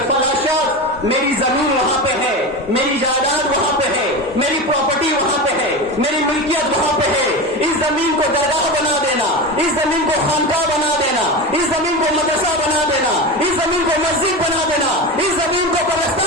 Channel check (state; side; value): normal; both; correlation 0.23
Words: فلاں شخص میری زمین وہاں پہ ہے، میری جائیداد وہاں پہ ہے، میری پراپرٹی وہاں پہ ہے، میری ملکیت وہاں پہ ہے، اس زمین کو درگاہ بنا دینا، اس زمین کو خانقاہ بنا دینا، اس زمین کو مدرسہ بنا دینا، اس زمین کو مسجد بنا دینا، اس زمین کو